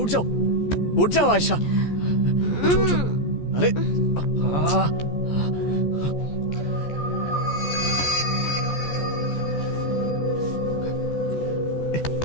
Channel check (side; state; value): right; late; 14 ms